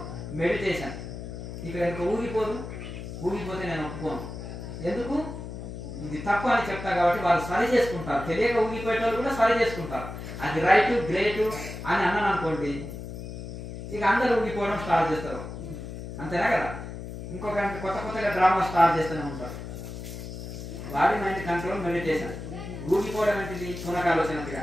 meditation. ఇక ఇంకా ఊగిపోతే నేను ఒప్పుకోను. ఎందుకు? ఇది తప్పు అని చెప్తా కాబట్టి వాళ్ళు సరి చేసుకుంటారు. తెలియక ఊగిపోయే వాళ్ళు కూడా సరి చేసుకుంటారు. అది రైట్ గ్రేట్ అని అన్నాను అనుకోండి, ఇక అందరూ ఊగిపోవడం స్టార్ట్ చేస్తారు. అంతేనా కదా? ఇంకొక కొత్తగా డ్రామా స్టార్ట్ చేస్తూనే ఉంటారు. Body mind control meditation. ఊగిపోవడం ఏంటిది? పునకాలోచనగా.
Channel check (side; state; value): left; noise; hum, 9 dB below the sound